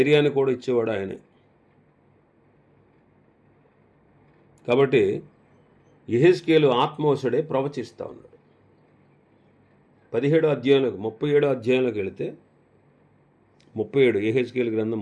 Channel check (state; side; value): identical; both; correlation 1.00